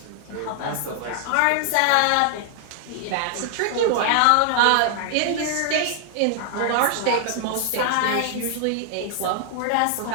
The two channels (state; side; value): different; both; correlation 0.00